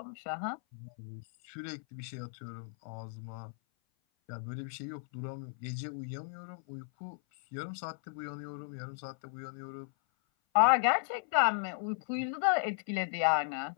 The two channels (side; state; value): right; silent; 54 dB below the other